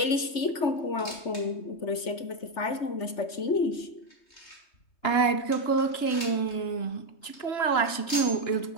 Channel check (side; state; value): right; late; 3.2 ms